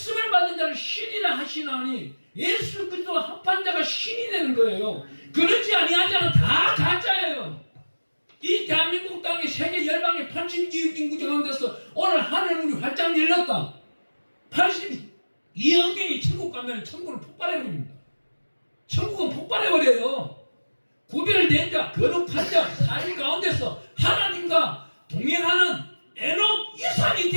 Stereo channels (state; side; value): inverted; both; correlation -1.00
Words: 받은 자를 신이라 하시나니 예수 그리스도와 합한 자가 신이 되는 거예요. 그렇지 아니한 자는 다 가짜예요. 이 대한민국 땅에 세계 열방의 82억 인구 가운데서 오늘 하늘문이 활짝 열렸다. 82억 명이 천국 가면 천국을 폭발해버립니다. 천국은 폭발해버려요. 구별된 자, 거룩한 자, 사실 가운데서 하나님과 동행하는 에녹 이상이